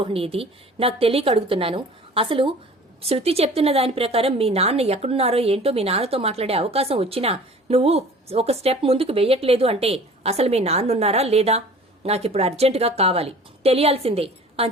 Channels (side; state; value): both; normal; correlation 0.45